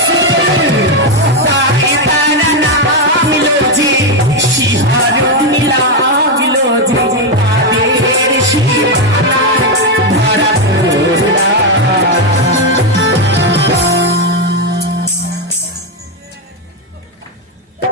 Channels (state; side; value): normal; both; correlation 0.05